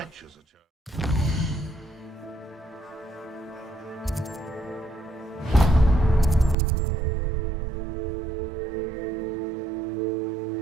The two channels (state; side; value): drops out; left; at 6.6 s